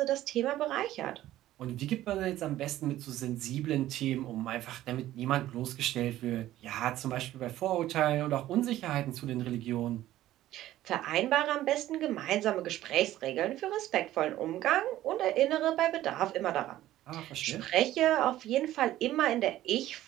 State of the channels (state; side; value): quieter; left; 14.3 dB